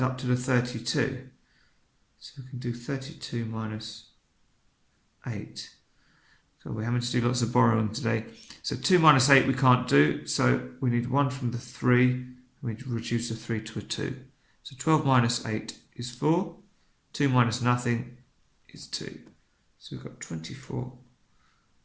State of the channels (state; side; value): identical; both; correlation 1.00